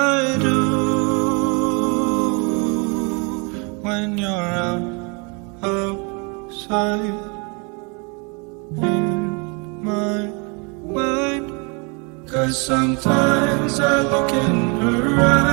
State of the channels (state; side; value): quieter; left; 32.7 dB